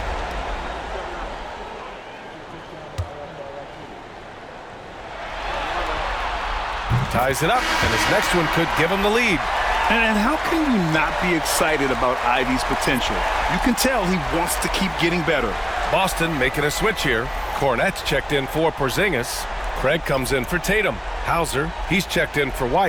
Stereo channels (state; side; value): identical; both; correlation 1.00